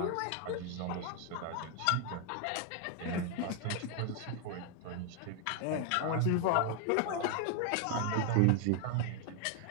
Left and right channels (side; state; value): both; different; correlation 0.00